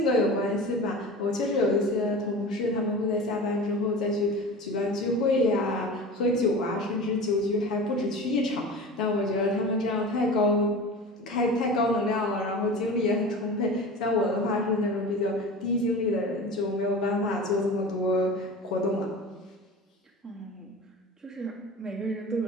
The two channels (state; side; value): normal; both; correlation 0.34